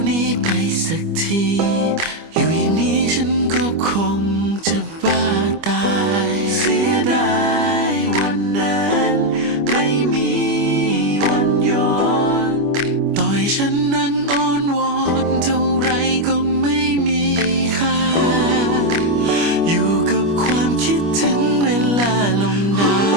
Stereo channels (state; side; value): late; left; 25 ms